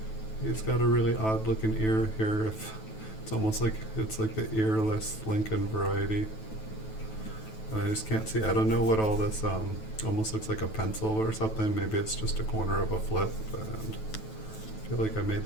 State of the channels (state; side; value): late; right; 9.2 ms